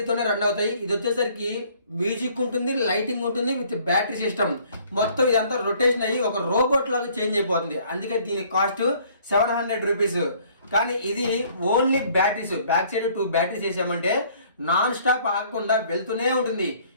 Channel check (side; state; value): both; inverted; correlation -0.58